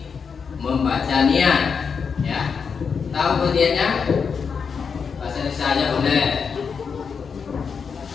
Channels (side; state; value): right; quieter; 6.0 dB